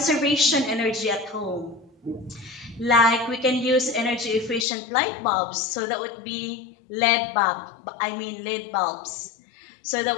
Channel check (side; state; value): right; drops out; at 4.7 s